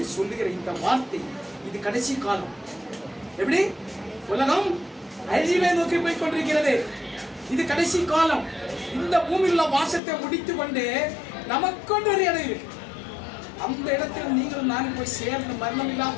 சொல்லுகிற இந்த வார்த்தை இது கடைசி காலம். எப்படி உலகம் அழிவை நோக்கி போய் கொண்டிருக்கிறது. இது கடைசி காலம். இந்த பூமியில் உள்ள வாசத்தை முடித்து கொண்டு நமக்கொண்டு ஒரு இடம் இருக்கு. அந்த இடத்தில் நீங்கள் நானும் போய் சேர்ந்து மரணம் இல்லாத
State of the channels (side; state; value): right; drops out; at 10.0 s